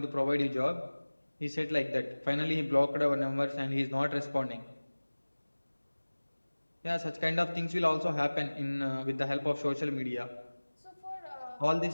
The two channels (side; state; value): both; inverted; correlation -1.00